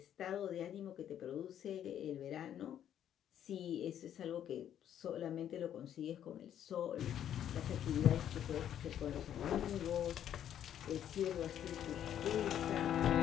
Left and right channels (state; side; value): quieter; right; 10.2 dB